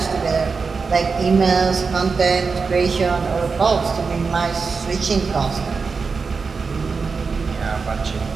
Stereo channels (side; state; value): left; quieter; 4.9 dB